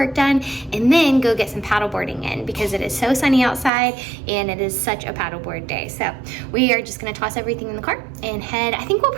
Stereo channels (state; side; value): drops out; left; at 3.7 s